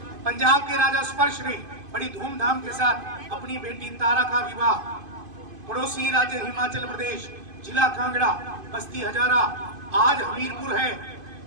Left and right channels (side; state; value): left; late; 2.5 ms